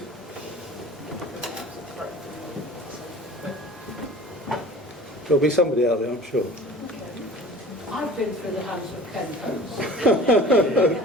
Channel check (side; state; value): both; normal; correlation 0.43